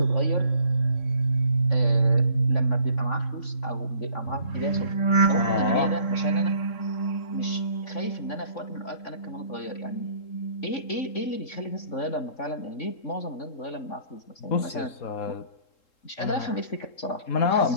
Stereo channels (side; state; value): right; late; 3.7 ms